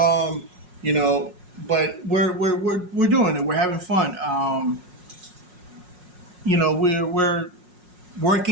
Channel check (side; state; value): left; late; 5.5 ms